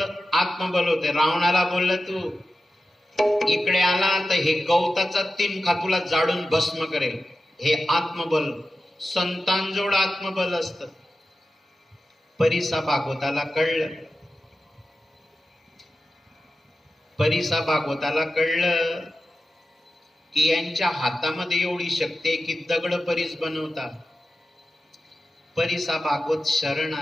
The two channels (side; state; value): both; normal; correlation 0.92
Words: आत्मबल होते. रावणाला बोललं तू इकडे आला तर हे गवताचा तिनखा तुला जाडून भस्म करेल, हे आत्मबल. संतांजवळ आत्मबल असतं. परिसा भागवताला कळलं, परिसा भागवताला कळलं की यांच्या हातामध्ये एवढी शक्ती आहे की दगड परीस बनवतात. परिसा भागवत शरण